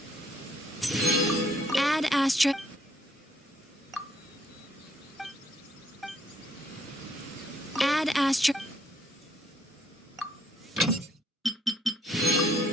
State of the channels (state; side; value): normal; both; correlation 0.67